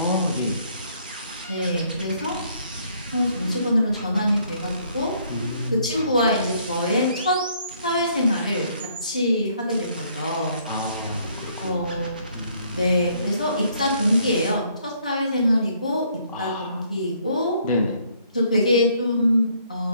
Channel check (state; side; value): inverted; both; correlation -0.66